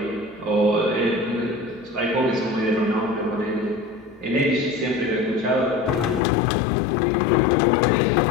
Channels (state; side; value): drops out; right; at 6.2 s